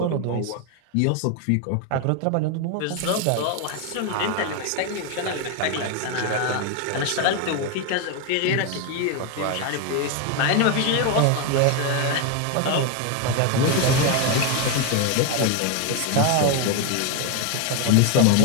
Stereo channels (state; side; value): different; both; correlation 0.02